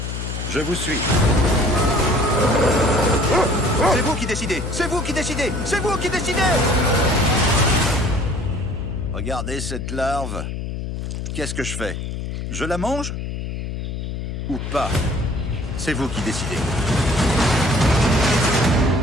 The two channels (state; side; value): noise; left; hum, 5 dB below the sound